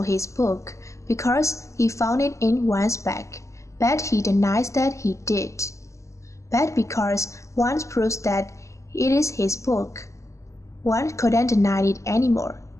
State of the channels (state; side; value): late; right; 0.15 ms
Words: his book, because he found it in Wang's bag, but he denies that he did. But because Wang proves that it is his book, Wang couldn't deny it anymore,